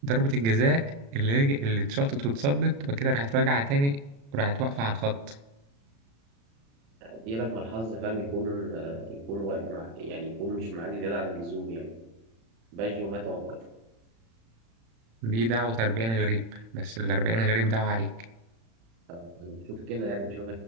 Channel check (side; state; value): left; late; 35 ms